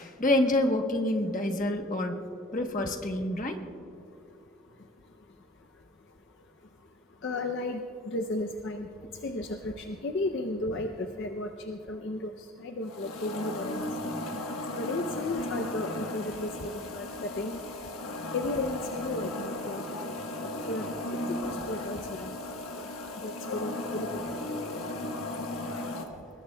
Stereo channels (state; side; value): normal; both; correlation 0.40